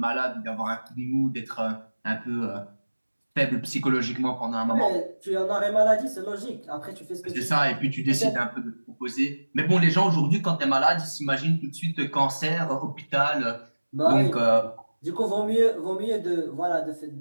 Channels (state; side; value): inverted; both; correlation -1.00